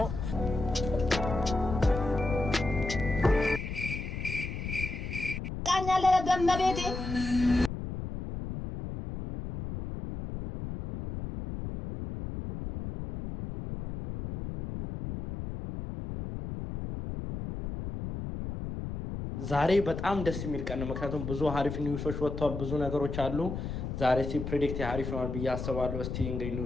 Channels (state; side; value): noise; left; rumble, 6 dB below the sound